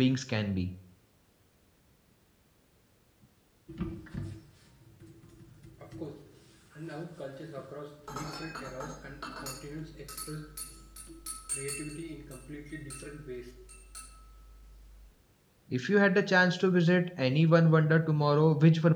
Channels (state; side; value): identical; both; correlation 1.00